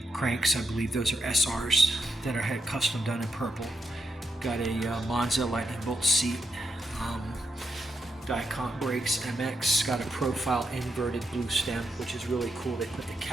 cranks. I believe those are SRs that are had custom done in purple. Got a Monza Lightning Bolt seat, Dicont brakes, MX. Got a profile inverted blue stem, which is really cool. They put the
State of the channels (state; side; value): normal; both; correlation 0.83